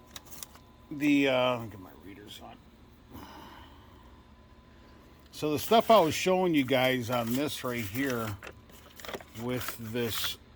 Get my readers on. So the stuff I was showing you guys on this right here with this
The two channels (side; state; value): both; identical; correlation 1.00